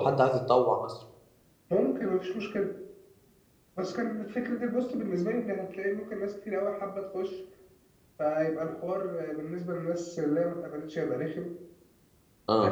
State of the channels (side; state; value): both; identical; correlation 1.00